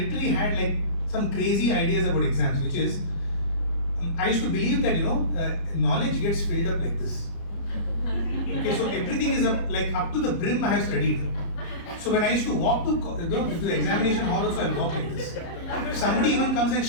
had like some crazy ideas about exams, which is, I used to believe that, knowledge gets filled up like this. Okay, so everything is up to the brim I have studied. So when I used to walk to the examination hall also, I'll walk like this. If somebody even comes and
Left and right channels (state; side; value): late; right; 30 ms